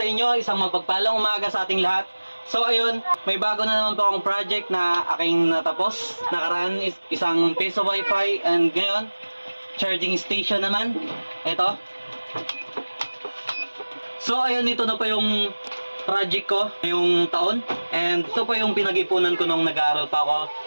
inyo. Isang magpagpalang umaga sa ating lahat. So ayun, may bago na naman po akong project na aking natapos. Nakaraan isang piso wifi and ngayon, charging station naman. Ito. So ayun, ito na po yung project ko ngayong taon. And ito po yung pinag-ipunan ko nung nag-aaral pa ako.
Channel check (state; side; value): inverted; both; correlation -1.00